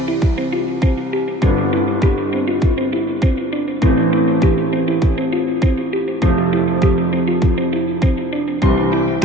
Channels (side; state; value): both; normal; correlation 0.52